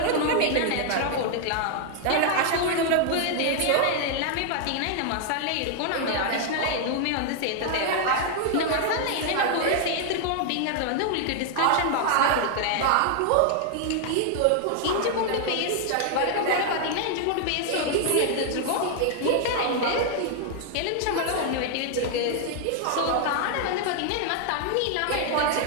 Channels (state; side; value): different; both; correlation 0.00